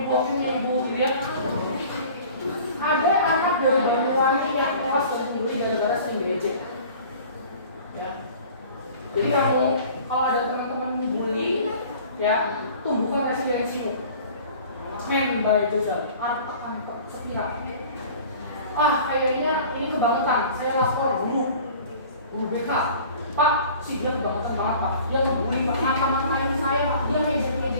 aku punya ibu, gitu ya. Ada anak dari Banyuwangi yang tewas dan dibeli gara-gara sering diejek. Ya. Jadi kamu kalau ada teman-teman bully, ya tumbuhkan residensimu. Men by Joseph, arta sepihak. Kayaknya ini kebangetan. Saya lapor guru BK. Pak, si dia kebangetan banget Pak. Dia ngebully Pak, ngata-ngatain saya Pak. Dia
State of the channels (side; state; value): both; inverted; correlation -0.46